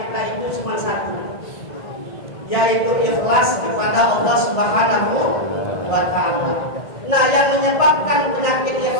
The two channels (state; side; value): late; right; 1.6 ms